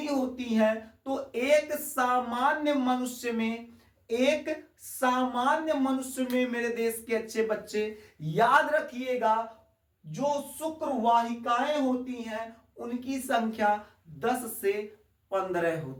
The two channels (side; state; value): both; identical; correlation 1.00